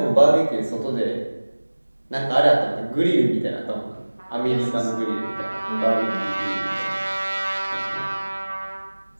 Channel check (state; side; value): inverted; both; correlation -1.00